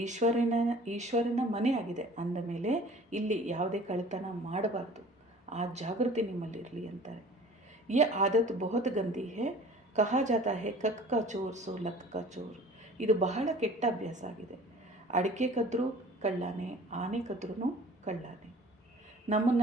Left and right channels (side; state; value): both; normal; correlation 0.47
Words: ಈಶ್ವರನ ಮನೆ ಆಗಿದೆ ಅಂದ ಮೇಲೆ ಇಲ್ಲಿ ಯಾವುದೇ ಕಳ್ಳತನ ಮಾಡಬಾರ್ದು, ಆ ಜಾಗೃತಿ ನಿಮ್ಮಲ್ಲಿರಲಿ ಅಂತಾರೆ. ये आदत बहुत गंदी है, कहा जाता है कक का चोर सो लक का चोर. ಇದು ಬಹಳ ಕೆಟ್ಟ ಅಭ್ಯಾಸ ಆಗಿದೆ. ಅಡಿಕೆ ಕದ್ರೂ ಕಳ್ಳಾನೆ, ಆನೆ ಕದ್ರೂ ಕಳ್ಳಾನೆ.